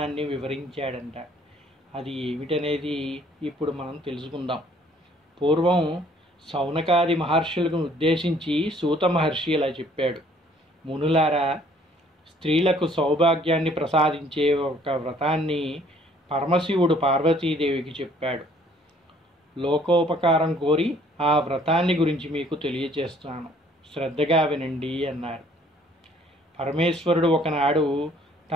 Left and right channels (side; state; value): both; normal; correlation 0.59